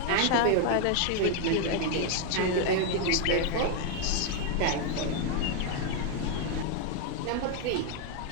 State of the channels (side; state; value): both; different; correlation 0.00